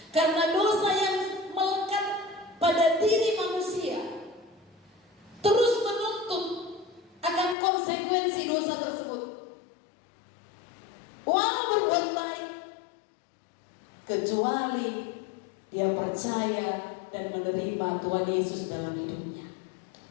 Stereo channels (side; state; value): right; drops out; at 7.6 s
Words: Karena dosa yang melekat pada diri manusia terus menuntut akan konsekuensi dosa tersebut. Walau berbuat baik, kecuali dia percaya dan menerima Tuhan Yesus dalam hidupnya.